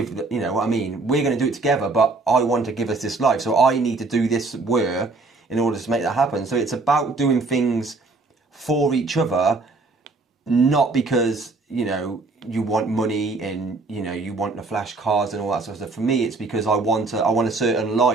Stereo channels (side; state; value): left; quieter; 3.6 dB